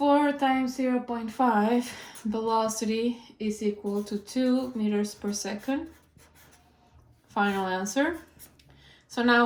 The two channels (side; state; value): both; identical; correlation 1.00